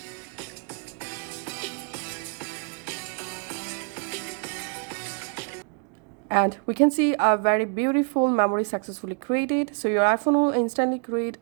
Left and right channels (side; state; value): left; quieter; 39.8 dB